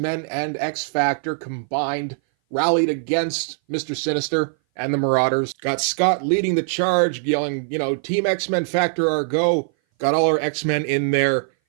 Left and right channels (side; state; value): left; silent; 59 dB below the other